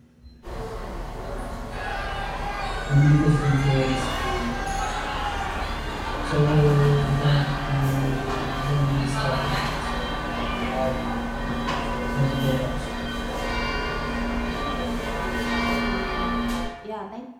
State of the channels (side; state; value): both; identical; correlation 1.00